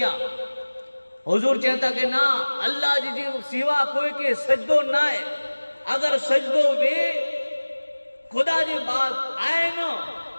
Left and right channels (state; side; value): inverted; both; correlation -1.00